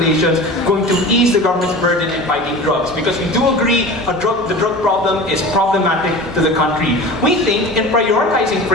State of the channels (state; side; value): normal; both; correlation 0.35